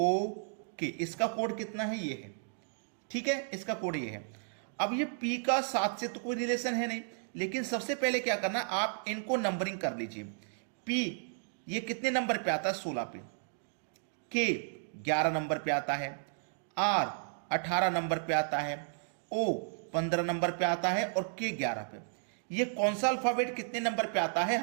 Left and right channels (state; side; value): silent; left; digital silence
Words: के, इसका कोड कितना है? ये है। ठीक है, इसका कोड ये है। अब ये पी का 7 से तो कोई रिलेशन है नहीं, लेकिन सबसे पहले क्या करना, आप इनको नंबरिंग कर लीजिए। पी ये कितने नंबर पे आता है? 16 पे। के 11 नंबर पे आता है। आर 18 नंबर पे आता है। ओ 15 नंबर पे आता है और के 11 पे। ये कौन सा अल्फाबेट कितने नंबर पे आता है